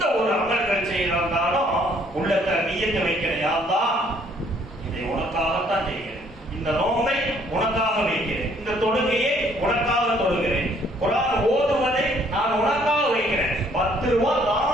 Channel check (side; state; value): both; normal; correlation 0.63